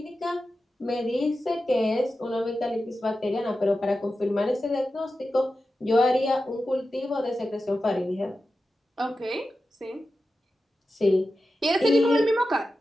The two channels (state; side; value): normal; both; correlation 0.92